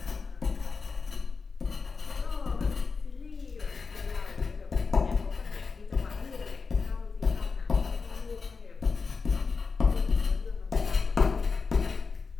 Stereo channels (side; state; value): right; quieter; 4.8 dB